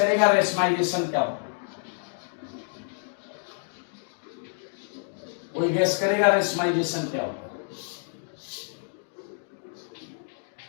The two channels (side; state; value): right; silent; digital silence